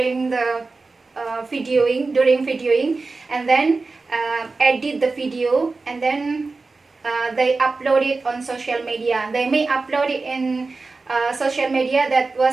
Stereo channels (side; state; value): left; quieter; 3.8 dB